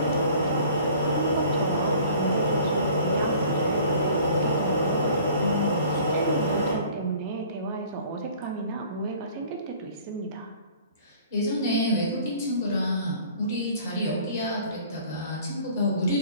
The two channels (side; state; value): both; inverted; correlation -0.49